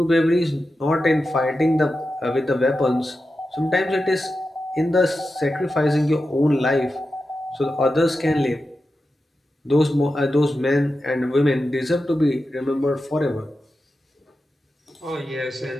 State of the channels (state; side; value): normal; both; correlation 0.91